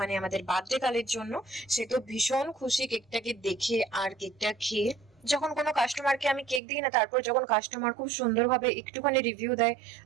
মানে আমাদের বার্থডে কালের জন্য, সে তো ভীষণ খুশি কেকটাকে দেখে আর কেকটা খেয়ে। যখন কোনো কাস্টমারকে আমি কেক দিই না, তারপর যখন কাস্টমার খুব সুন্দরভাবে একটুখানি রিভিউ দেয়,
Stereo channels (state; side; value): drops out; left; at 6.6 s